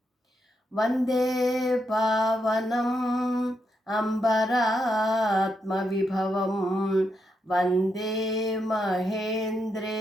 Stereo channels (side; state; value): both; normal; correlation 0.82